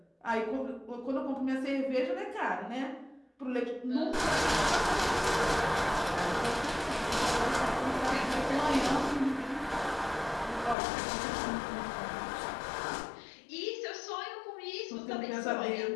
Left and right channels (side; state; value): right; drops out; at 10.8 s